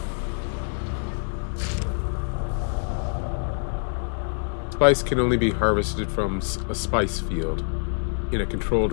Spice can only be harvested from a spice field in a controlled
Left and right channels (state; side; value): silent; right; 61 dB below the other